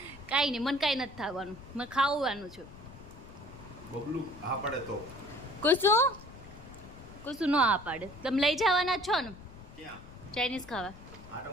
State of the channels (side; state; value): left; noise; rumble, 17 dB below the sound